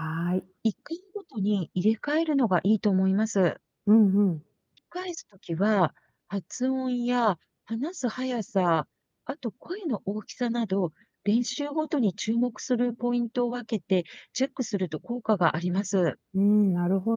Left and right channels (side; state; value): both; identical; correlation 1.00